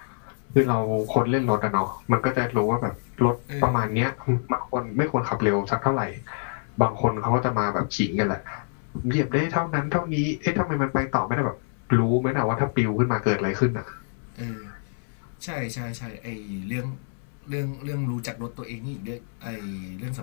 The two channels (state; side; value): silent; right; digital silence